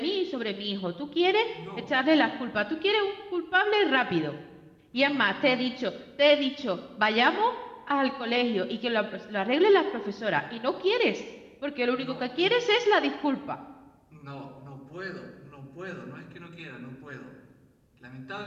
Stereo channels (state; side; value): identical; both; correlation 1.00